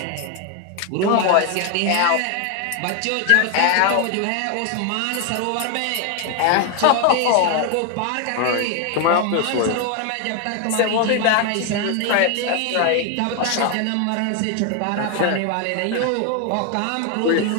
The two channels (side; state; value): both; different; correlation 0.01